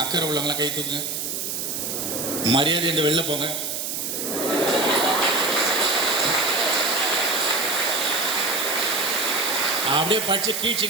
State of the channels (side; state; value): right; noise; hiss, 3 dB below the sound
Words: அக்கறை உள்ளவங்களாம் கை தூக்குங்க. மரியாதை என்று வெளில போங்க. அப்படியே படிச்சு